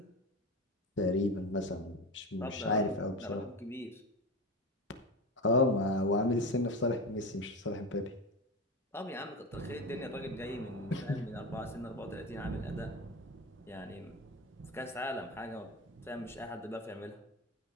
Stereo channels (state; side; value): normal; both; correlation 0.22